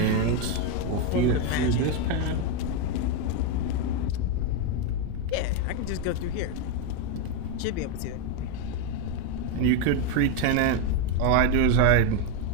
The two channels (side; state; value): both; different; correlation 0.02